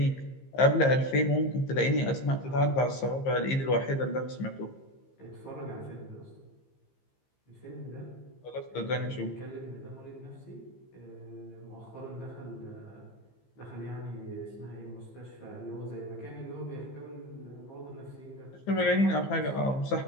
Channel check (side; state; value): right; late; 15 ms